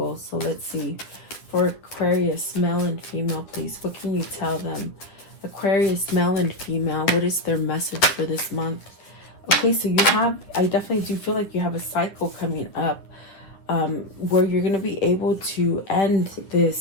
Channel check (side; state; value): right; late; 9.6 ms